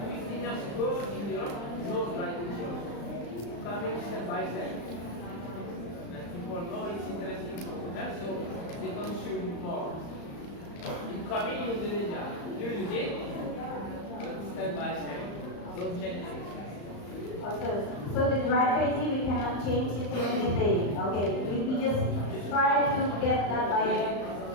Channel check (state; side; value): late; right; 35 ms